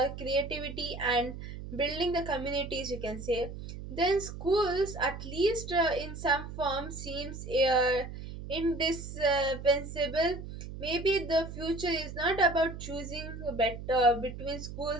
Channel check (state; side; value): noise; right; hum, 10 dB below the sound